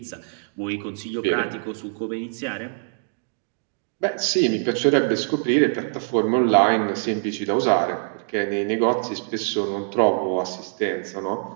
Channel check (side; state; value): left; silent; 63 dB below the other